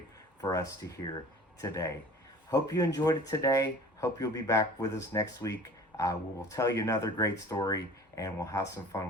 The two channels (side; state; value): both; normal; correlation 0.44